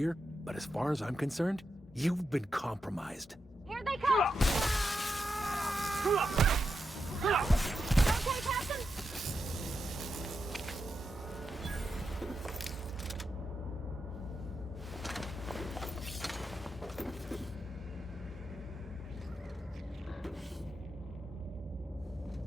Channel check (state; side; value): normal; both; correlation 0.87